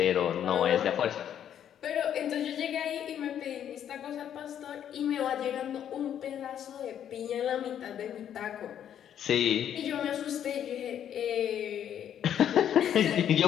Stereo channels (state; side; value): quieter; right; 9.7 dB